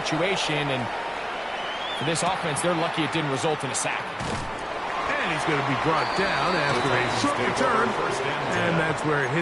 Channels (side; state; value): both; identical; correlation 1.00